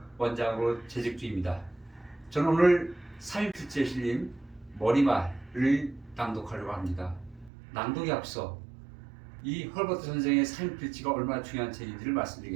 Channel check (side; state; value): left; drops out; at 7.5 s